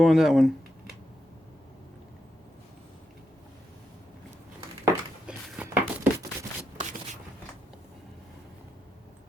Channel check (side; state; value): both; normal; correlation 0.84